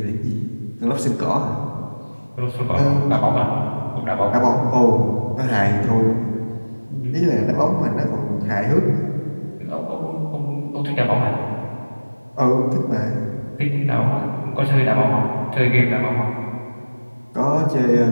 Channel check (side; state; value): both; inverted; correlation -1.00